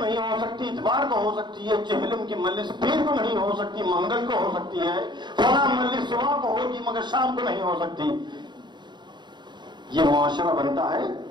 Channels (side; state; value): left; late; 0.22 ms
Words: ہو سکتی، اتوار کو ہو سکتی ہے، چہلم کی مجلس پیر کو نہیں ہو سکتی، منگل کو ہو سکتی ہے، فلاں مجلس صبح کو ہوگی مگر شام کو نہیں ہو سکتی۔ یہ معاشرہ بنتا ہے